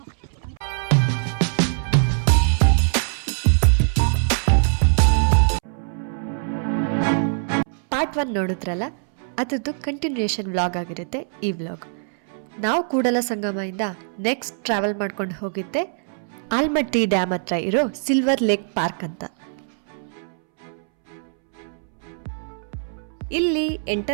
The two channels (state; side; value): silent; left; 64 dB below the other